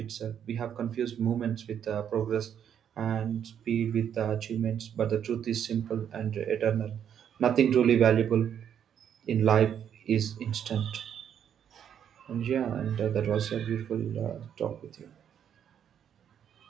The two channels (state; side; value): quieter; left; 8.9 dB